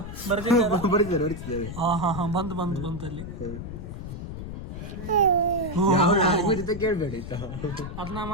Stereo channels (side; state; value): left; noise; rumble, 8 dB below the sound